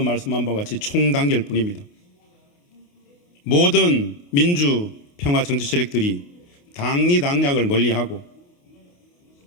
바와 같이 총단결뿐입니다. 모든 민주평화 정치 세력들이 당리당략을 멀리하고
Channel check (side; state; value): right; late; 28 ms